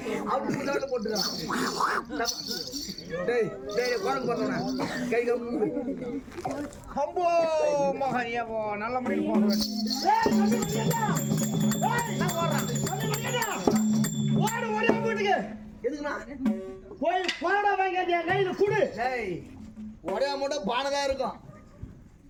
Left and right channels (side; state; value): both; identical; correlation 1.00